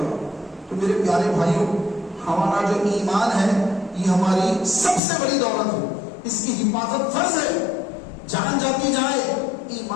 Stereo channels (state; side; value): drops out; right; at 5.0 s